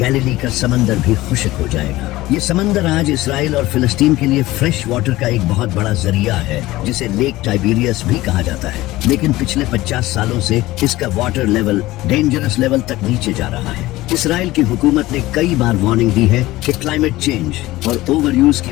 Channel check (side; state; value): right; quieter; 17.9 dB